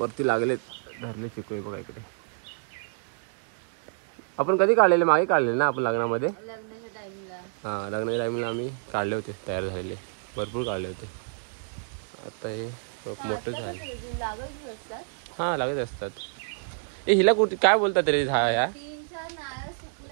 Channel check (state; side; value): silent; left; digital silence